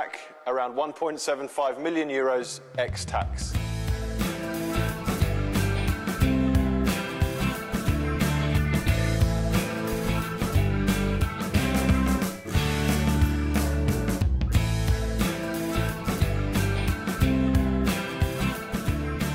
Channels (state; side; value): identical; both; correlation 1.00